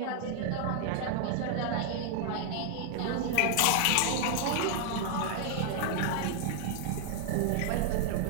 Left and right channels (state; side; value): different; both; correlation 0.00